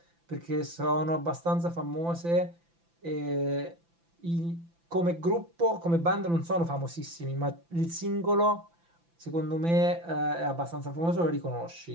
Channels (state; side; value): late; left; 5.9 ms